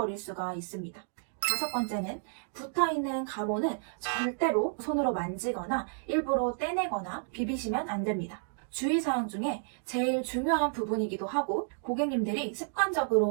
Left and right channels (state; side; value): silent; left; digital silence